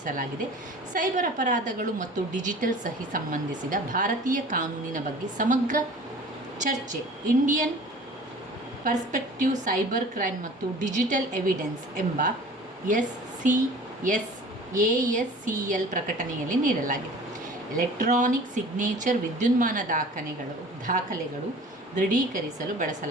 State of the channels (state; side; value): normal; both; correlation 0.44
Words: ಸೈಬರ್ ಅಪರಾಧಗಳು ಮತ್ತು ಡಿಜಿಟಲ್ ಸಹಿ ಸಂಬಂಧಿಸಿದ ಭಾರತೀಯ ಕಾನೂನಿನ ಬಗ್ಗೆ ಸಮಗ್ರ ಚರ್ಚೆ, ಇಂಡಿಯನ್ ಪರ್ಸ್ಪೆಕ್ಟಿವ್ ಸೈಬರ್ ಕ್ರೈಮ್ ಮತ್ತು ಡಿಜಿಟಲ್ ಎವಿಡೆನ್ಸ್ ಎಂಬ ASCL ಪ್ರಕಟಣೆಯಲ್ಲಿ ನೀಡಲಾಗಿದೆ. ಎಲೆಕ್ಟ್ರಾನಿಕ್ ಸಿಗ್ನೇಚರ್ ವಿದ್ಯುನ್ಮಾನ ದಾಖಲೆಗಳು ದೃಢೀಕರಿಸಲು